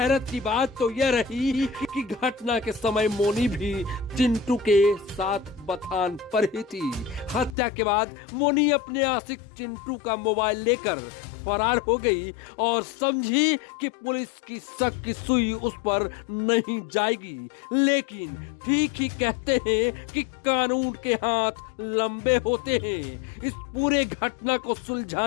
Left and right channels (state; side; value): drops out; right; at 7.6 s